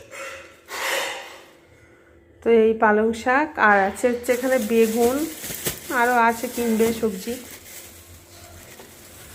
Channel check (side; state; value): both; identical; correlation 1.00